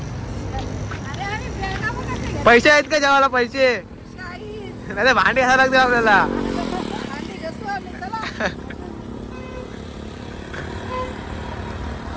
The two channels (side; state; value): both; identical; correlation 1.00